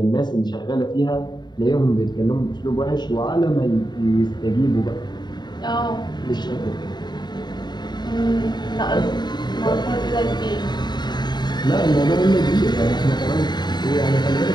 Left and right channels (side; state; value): right; late; 0.21 ms